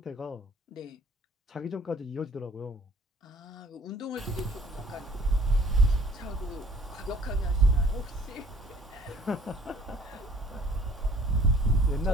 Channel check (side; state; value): both; normal; correlation 0.54